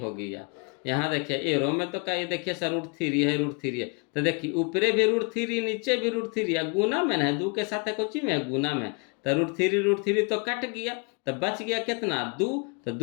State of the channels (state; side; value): quieter; right; 33.5 dB